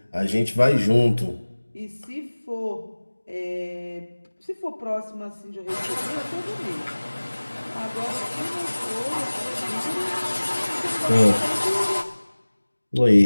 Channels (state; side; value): inverted; both; correlation -1.00